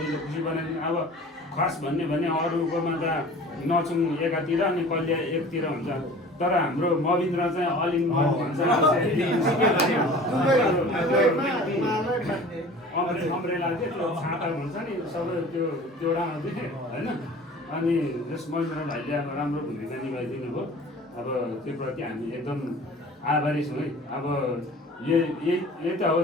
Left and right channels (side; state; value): both; normal; correlation 0.43